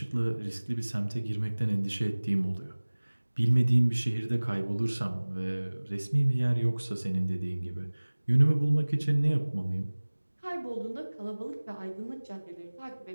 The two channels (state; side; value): inverted; both; correlation -1.00